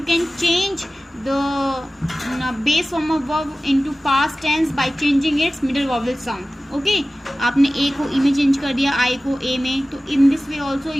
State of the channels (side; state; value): both; normal; correlation 0.96